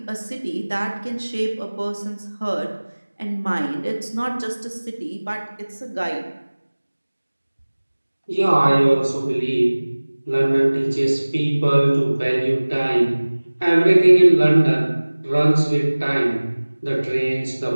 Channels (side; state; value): both; inverted; correlation -1.00